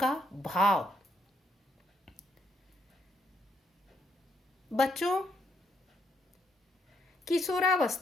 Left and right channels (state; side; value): normal; both; correlation 0.75